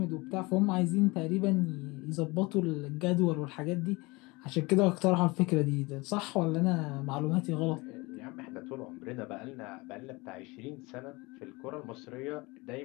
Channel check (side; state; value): right; quieter; 24.4 dB